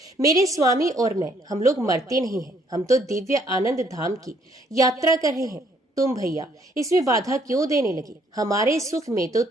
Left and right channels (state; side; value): normal; both; correlation 0.66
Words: मेरे स्वामी और मैं, हम लोग मरते नहीं हैं, हम तो दिव्य आनंद धाम की यात्रा कर रहे हैं। तुम भैया इसमें बाधा क्यों देने लगी? हमारे सुख में तो